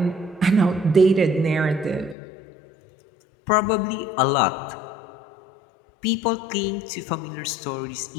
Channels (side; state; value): right; drops out; at 2.1 s